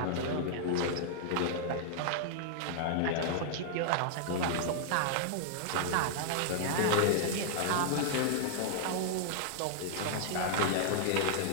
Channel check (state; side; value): different; both; correlation -0.01